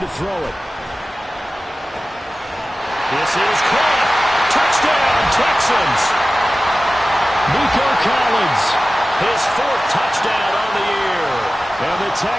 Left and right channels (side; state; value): both; normal; correlation 0.96